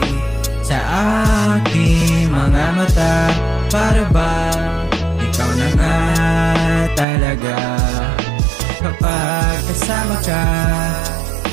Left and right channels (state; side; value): drops out; left; at 7.1 s